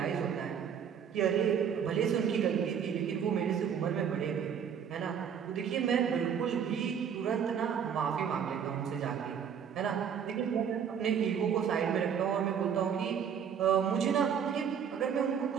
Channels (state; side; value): quieter; left; 7.8 dB